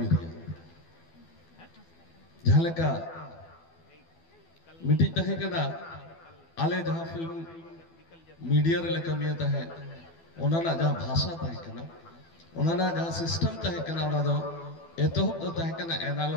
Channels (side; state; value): right; late; 12 ms